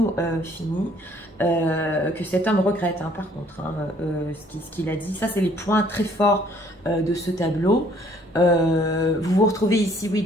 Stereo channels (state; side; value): normal; both; correlation 0.61